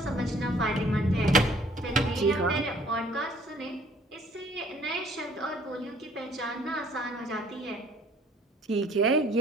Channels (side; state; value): both; normal; correlation 0.57